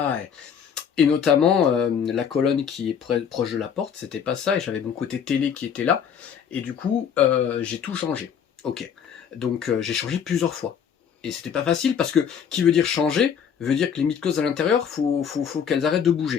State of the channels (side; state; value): right; quieter; 7.7 dB